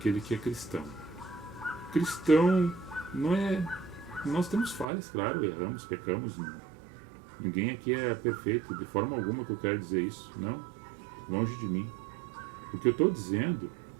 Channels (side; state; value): left; drops out; at 4.9 s